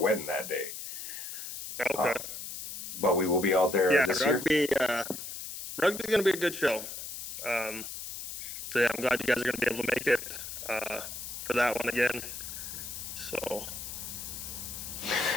that day. Okay. But we will be out there this rugby, year. Rugby's going to be a good show. So, yeah, I'm glad you guys are going to be able to make it for that one again. So.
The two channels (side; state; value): left; noise; hiss, 8 dB below the sound